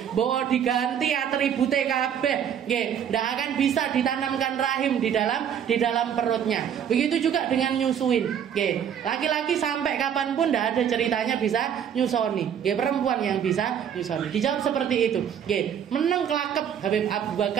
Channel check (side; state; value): left; quieter; 8.7 dB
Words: Bawa diganti atribute kabeh, ndak akan bisa ditanamkan rahim di dalam perutnya. Begitu juga dengan nyusuin, laki-laki sampai kapanpun ndak ada ceritanya bisa nyusoni. Perempuan yang bisa nyusoni. Dijawab seperti itu. Menang kelakep Habib Abu